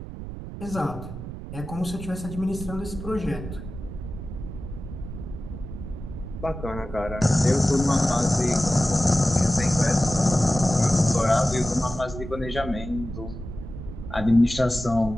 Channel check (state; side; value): noise; right; rumble, 10 dB below the sound